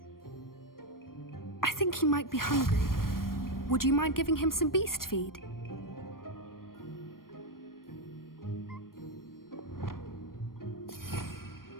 I think he might be hungry. Would you mind giving him some beast feed?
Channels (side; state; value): right; late; 0.91 ms